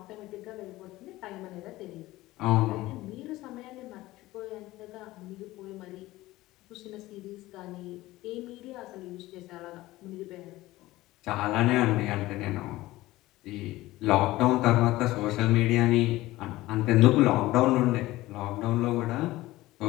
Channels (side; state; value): right; quieter; 17.8 dB